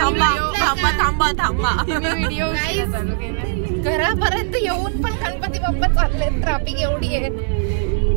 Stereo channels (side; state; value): left; silent; digital silence